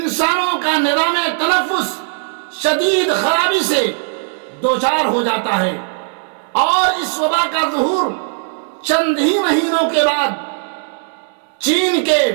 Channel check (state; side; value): silent; left; digital silence